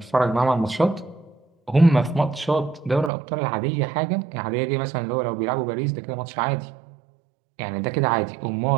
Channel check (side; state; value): left; drops out; at 3.1 s